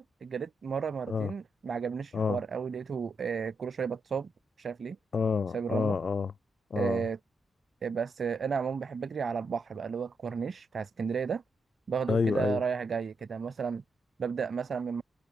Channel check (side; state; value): both; normal; correlation 0.81